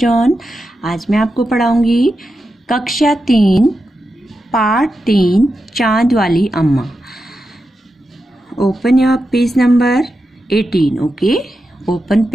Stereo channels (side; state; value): both; normal; correlation 0.89